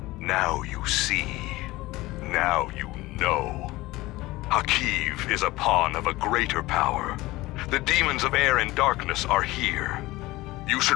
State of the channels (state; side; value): quieter; right; 19.2 dB